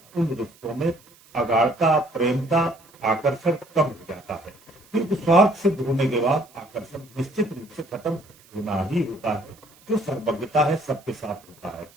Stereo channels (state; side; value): noise; right; hiss, 27 dB below the sound